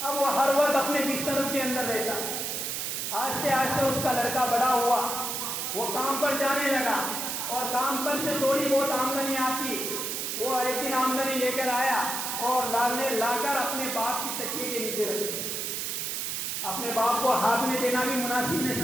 وہ ہر وقت اپنے بستروں کے اندر رہتا، آہستہ آہستہ اس کا لڑکا بڑا ہوا، وہ کام پر جانے لگا اور کام پر سے تھوڑی بہت آمدنی آتی، وہ ایک دن آمدنی لے کر آیا اور لا کر اپنے باپ کی تکیے کے نیچے رکھ دیا۔ اپنے باپ کو ہاتھ میں دینا بھی مناسب نہیں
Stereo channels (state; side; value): noise; right; hiss, 2 dB below the sound